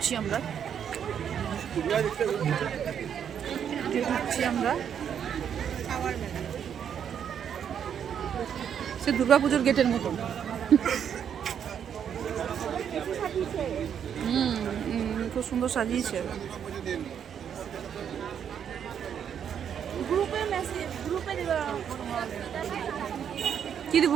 আমরা, সে দুর্গাপুজোর গেটের মতন। খুব সুন্দর সাজিয়েছে। কি দিব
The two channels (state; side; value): quieter; left; 8.4 dB